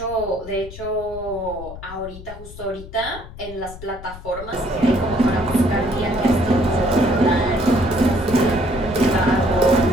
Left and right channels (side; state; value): left; noise; rumble, 15 dB below the sound